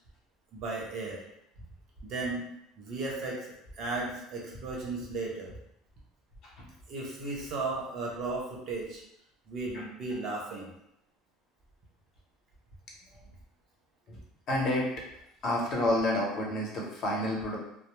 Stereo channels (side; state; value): both; normal; correlation 0.45